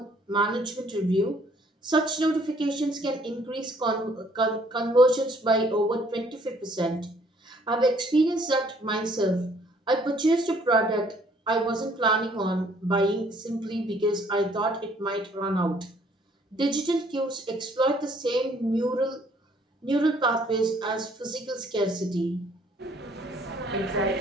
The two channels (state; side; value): normal; both; correlation 0.62